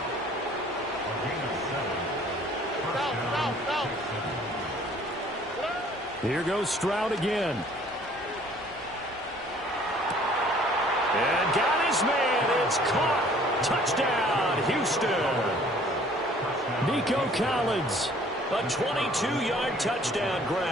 Here goes Stroud again. And got his man. It's caught. Touchdown, Houston. Nico Collins. A 22-yard touchdown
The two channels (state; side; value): normal; both; correlation 0.55